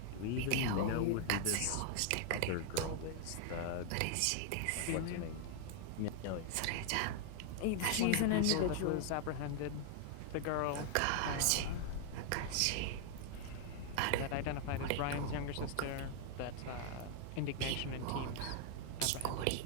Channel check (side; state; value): both; different; correlation 0.00